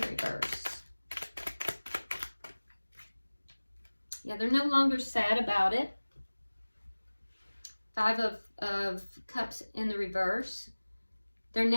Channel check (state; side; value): inverted; both; correlation -1.00